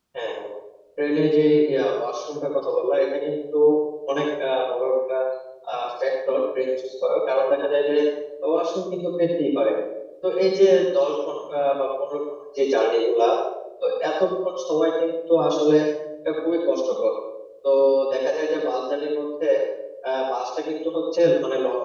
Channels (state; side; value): identical; both; correlation 1.00